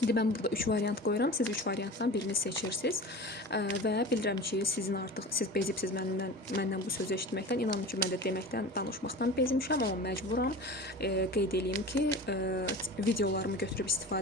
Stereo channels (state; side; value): normal; both; correlation 0.35